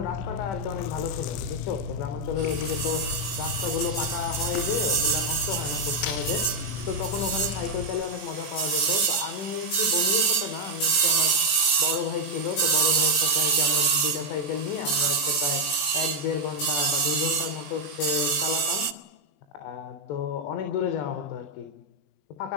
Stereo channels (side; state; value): right; late; 21 ms